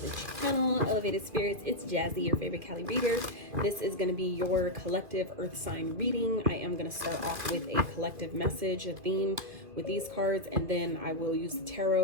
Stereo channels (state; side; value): late; left; 2.5 ms